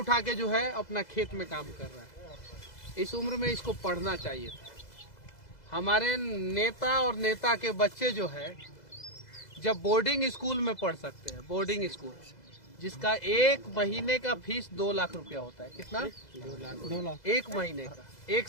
के जो है अपना खेत में काम कर रहा है। इस उम्र में इसको पढ़ना चाहिए था। हमारे नेता और नेता के बच्चे जो है जब बोर्डिंग स्कूल में पढ़ सकते हैं, बोर्डिंग स्कूल जिसका 1 महीने का फीस 2 लाख रुपया होता है। कितना? 2 लाख 1 महीने का। 1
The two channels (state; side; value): late; right; 2.0 ms